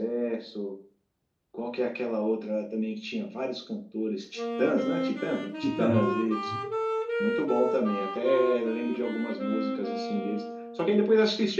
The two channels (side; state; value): both; identical; correlation 1.00